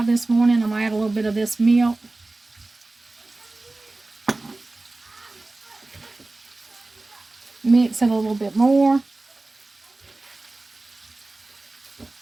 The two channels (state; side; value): quieter; left; 3.0 dB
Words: this morning. I'm going to add a little bit of this milk. Mix it a little bit more.